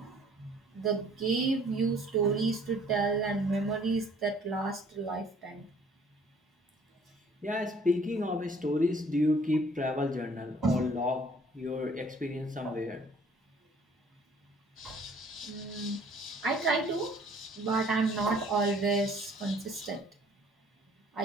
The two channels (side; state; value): both; normal; correlation 0.57